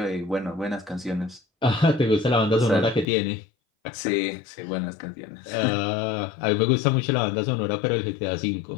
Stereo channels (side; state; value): right; drops out; at 3.1 s